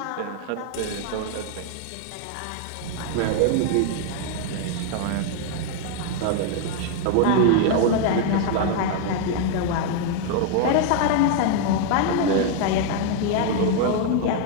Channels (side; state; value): both; different; correlation 0.00